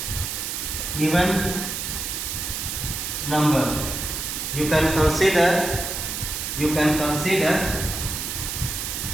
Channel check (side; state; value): right; noise; hiss, 4 dB below the sound